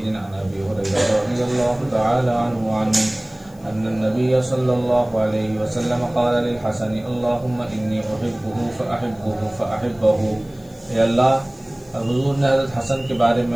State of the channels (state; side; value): noise; left; hiss, 29 dB below the sound